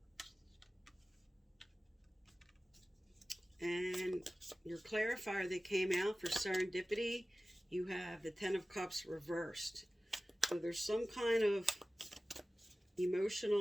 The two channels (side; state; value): both; normal; correlation 0.96